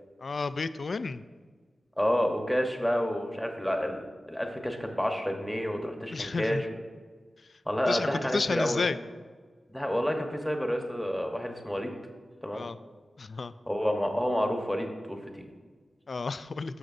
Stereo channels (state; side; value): normal; both; correlation 0.96